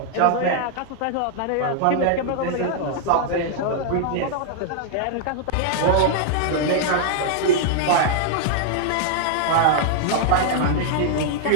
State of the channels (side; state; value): both; different; correlation -0.01